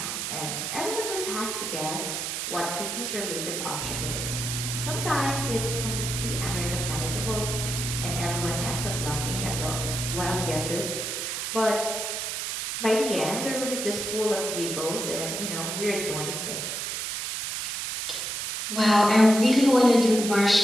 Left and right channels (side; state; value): right; noise; hiss, 3 dB below the sound